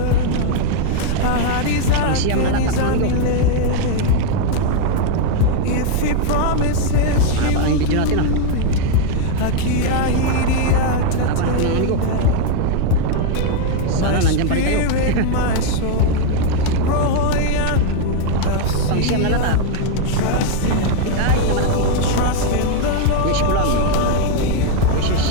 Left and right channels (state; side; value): different; both; correlation 0.01